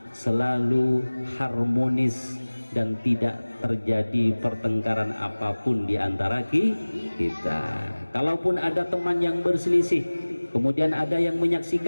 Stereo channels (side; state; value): both; inverted; correlation -1.00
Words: selalu harmonis, dan tidak terjadi pertengkaran apapun di antara kita. Kalaupun ada teman yang berselisih, kemudian ada yang